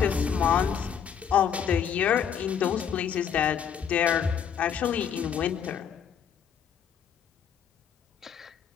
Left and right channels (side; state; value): right; quieter; 8.0 dB